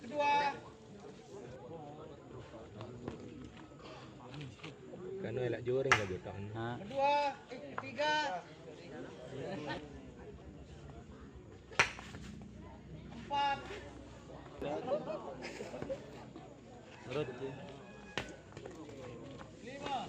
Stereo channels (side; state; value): both; identical; correlation 1.00